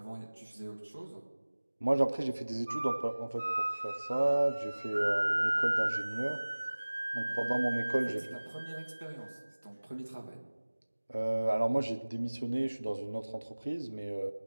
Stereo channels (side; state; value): both; inverted; correlation -1.00